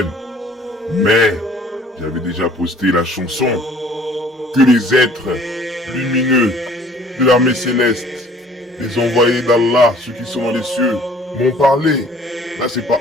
Mais, j'avais déjà posté la chanson que les êtres lumineux de l'armée céleste, les envoyés d'Allah, ceux qui sont dans les cieux, m'ont parlé. Là, c'est pas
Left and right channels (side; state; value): both; normal; correlation 0.54